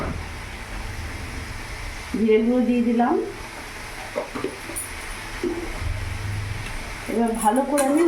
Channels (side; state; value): both; identical; correlation 1.00